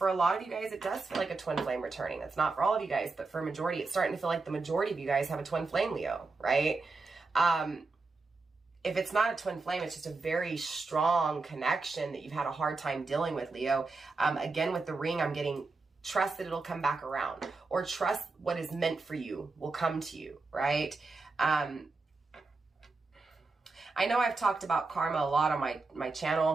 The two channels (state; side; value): quieter; left; 3.9 dB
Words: a lot of you guys, it does feel like a twin flame returning. That's not for all of you guys, but for a majority, it's starting to feel like the majority of you guys have a twin flame, Leo, right? If it's not a twin flame, it's just a very strong connection that you've had a hard time dealing with, Leo. Again, with the ring, I'm getting trust that it'll come back around, or trust what is meant for you will come to you, right? I know I've talked about karma a lot on my